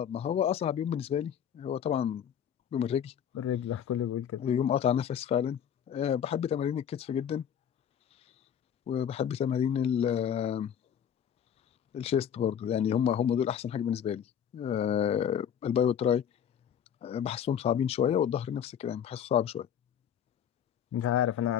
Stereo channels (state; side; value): quieter; right; 8.8 dB